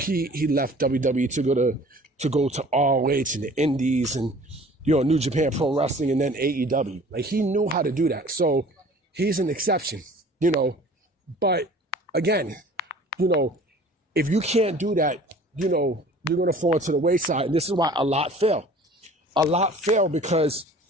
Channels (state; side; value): normal; both; correlation 0.48